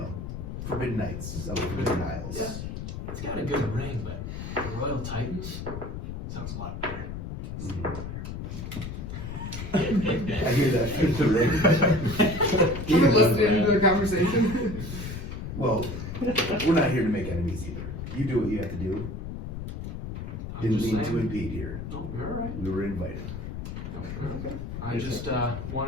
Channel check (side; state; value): left; noise; rumble, 7 dB below the sound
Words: Forbidden Nights of the Forbidden Isles. Yeah. It's got a good ring, but the Royal Titans sounds a lot better. I hear that through the ring. You've been listening to the conversation. Well, we're not here to make enemies either. You do what you have to do. I'm Didn't just mean to saying. impede here. No, you're all right. We were invited. Okay. I just